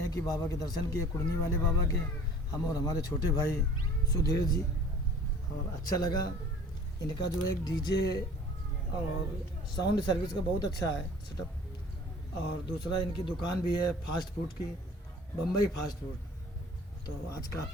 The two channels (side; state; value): both; normal; correlation 0.48